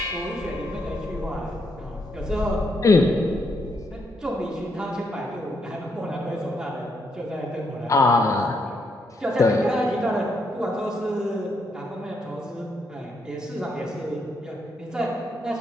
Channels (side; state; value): both; normal; correlation 0.77